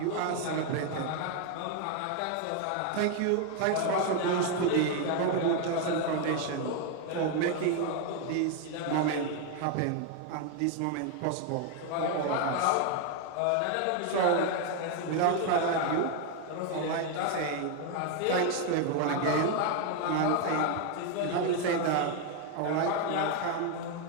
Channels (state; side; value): different; both; correlation 0.01